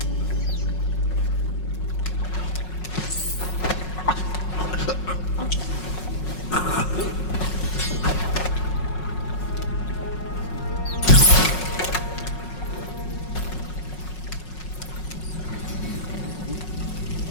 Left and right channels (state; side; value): late; right; 5.5 ms